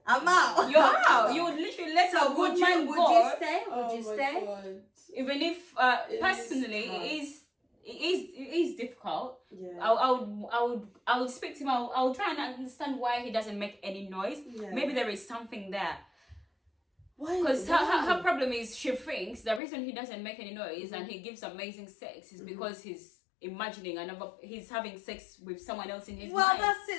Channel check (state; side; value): drops out; right; at 19.6 s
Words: I'm out. You're out. You would literally let So a good would man you go, stay? Would you stay? God. even if It personally is it is difficult. Yeah. I would speak to him. I would try and understand why he doesn't make any noise. Yeah. Maybe there is something there. Why? Because why? her problem is she thinks the reason he doesn't make any noise and he gives amazing sex is because he's imagining he's having sex with someone else in his Well, mind. that's